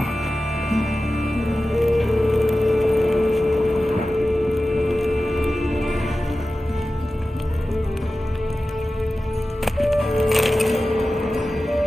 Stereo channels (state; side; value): normal; both; correlation 0.95